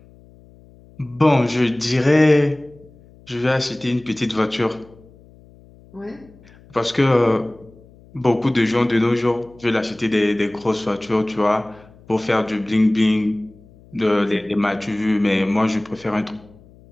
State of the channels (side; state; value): left; noise; hum, 25 dB below the sound